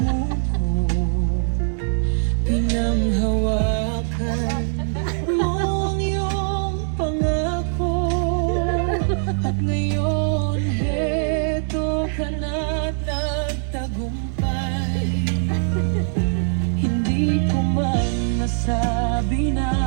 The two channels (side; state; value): left; silent; 57 dB below the other